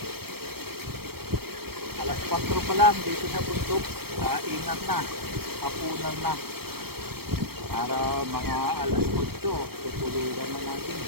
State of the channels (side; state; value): left; late; 0.95 ms